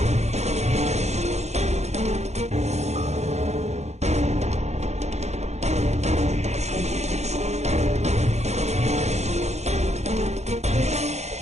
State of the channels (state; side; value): late; left; 0.32 ms